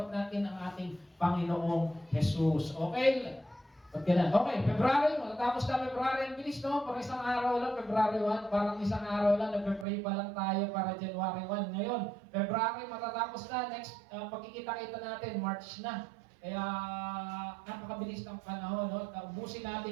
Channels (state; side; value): drops out; left; at 9.9 s